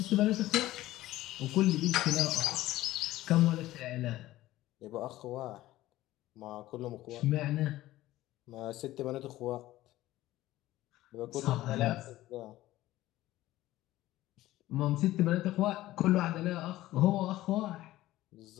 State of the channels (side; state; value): right; quieter; 15.9 dB